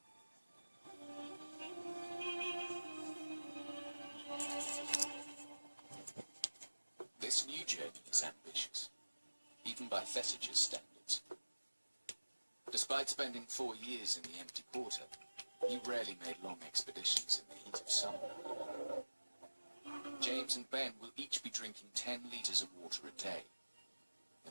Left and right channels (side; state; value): both; inverted; correlation -1.00